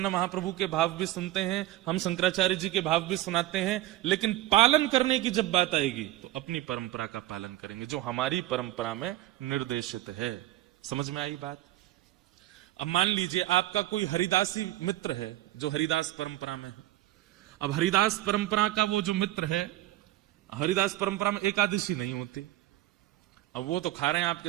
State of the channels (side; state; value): left; quieter; 15.4 dB